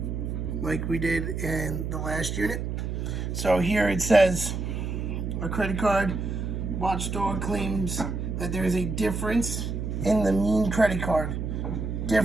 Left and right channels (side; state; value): right; noise; hum, 3 dB below the sound